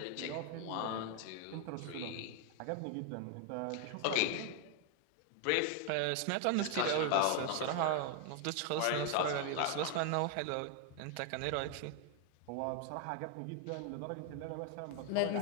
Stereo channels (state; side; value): different; both; correlation 0.01